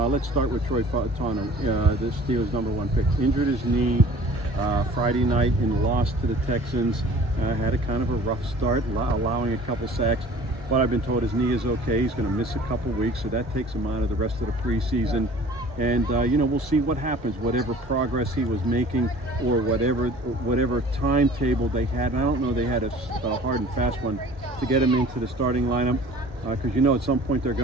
start with Troy Fautanu, the Steelers' #1 pick. Injured his knee Friday night and lost to the Texans. Had a kind of a rough start, allowing a couple sacks. But I've been told his knee is okay. He's going to miss a couple weeks, so that takes him out of the rest of the preseason. And we'll see what happens. Whatever progress he was making, or whatever timetable they had. I don't know they had a hard and fast one to get him into the starting lineup, because at some point they're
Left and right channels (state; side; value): normal; both; correlation 0.47